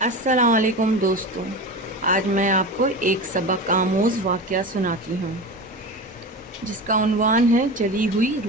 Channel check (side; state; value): both; normal; correlation 0.27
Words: علیکم دوستوں، آج میں آپ کو ایک سبق آموز واقعہ سناتی ہوں جس کا عنوان ہے جلی ہوئی